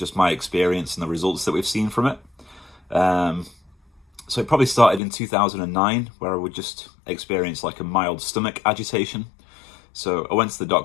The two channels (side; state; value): right; drops out; at 5.0 s